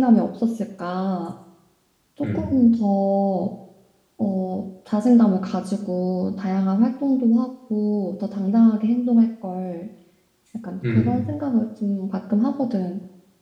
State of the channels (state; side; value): identical; both; correlation 1.00